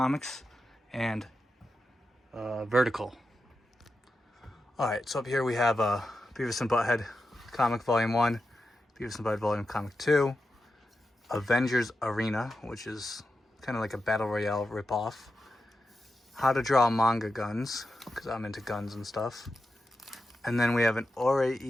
and Vertical. Alright, so up here we have Beavis and Butthead comic volume 1, Beavis and Butthead volume comic 2, Avengers Arena, which is kind of like a battle royale ripoff, How to Draw Manga Guns, because I'm into guns and stuff, and then we have an Ore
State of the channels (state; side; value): normal; both; correlation 0.90